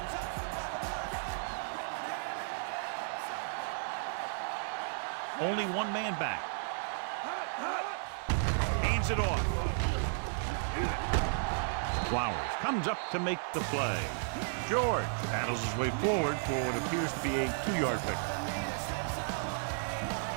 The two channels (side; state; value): left; silent; 55 dB below the other